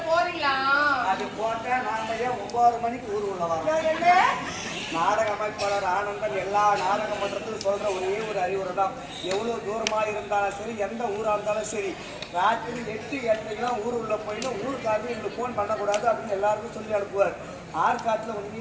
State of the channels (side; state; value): both; identical; correlation 1.00